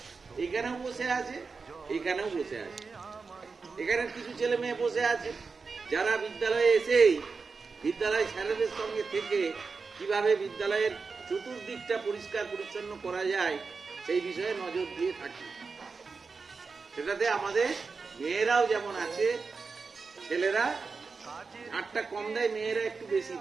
এখানেও বসে আছে, এখানেও বসে আছে। এখানে কিছু ছেলে মেয়ে বসে আছে যারা বিদ্যালয়ে এসেই বিদ্যালয় স্যারেদের সঙ্গে থেকে কিভাবে বিদ্যালয়ের চতুর্দিকটা পরিষ্কার পরিচ্ছন্ন করা যায় সেই বিষয়ে নজর দিয়ে থাকি। সেটাতে আমাদের মেয়েরাও যেমন আছে, ছেলেরা ঝাড়টা কম দেয়, মেয়েরা একটু বেশি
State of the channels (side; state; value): left; quieter; 4.7 dB